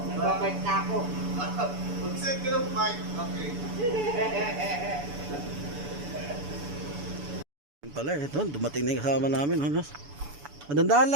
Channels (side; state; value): left; late; 6.9 ms